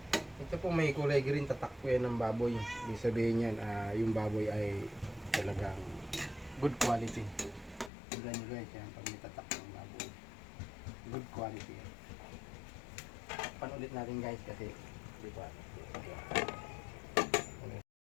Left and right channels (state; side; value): drops out; right; at 7.9 s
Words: Ito po may kulay green, tatak po yan ng baboy. Ibig sabihin yan yung baboy ay talagang good quality. Tignan nyo guys yan pag may tatak ng baboy, good quality yan. Panulit natin guys kasi di ba?